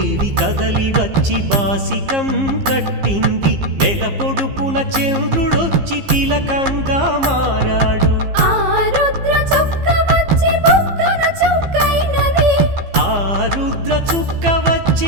కదలి వచ్చి బాసికం కట్టింది నెల పొడుపున చంద్రుడొచ్చి తిలకంగా మారాడు రుద్ర చుక్క వచ్చి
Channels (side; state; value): left; late; 15 ms